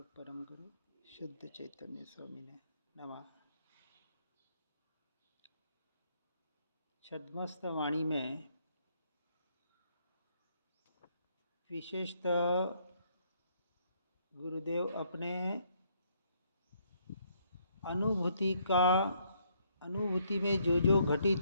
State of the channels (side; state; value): both; inverted; correlation -0.70